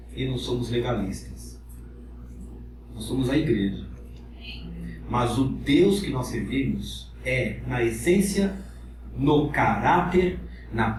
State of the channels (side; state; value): both; identical; correlation 1.00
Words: e não somos legalistas. Nós somos a igreja. Mas o Deus que nós servimos é, na essência, no caráter, na